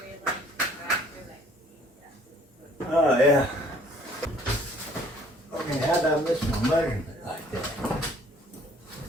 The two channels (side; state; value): both; normal; correlation 0.57